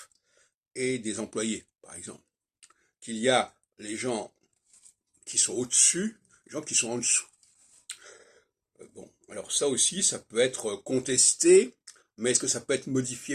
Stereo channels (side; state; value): both; identical; correlation 1.00